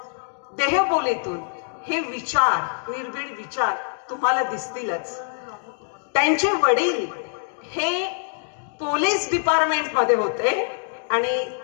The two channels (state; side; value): silent; right; digital silence